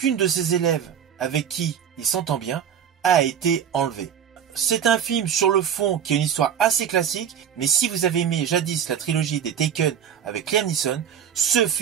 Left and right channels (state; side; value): quieter; left; 8.6 dB